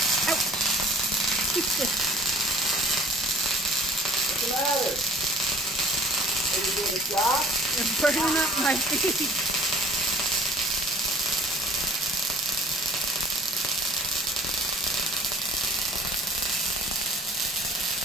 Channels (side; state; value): both; normal; correlation 0.48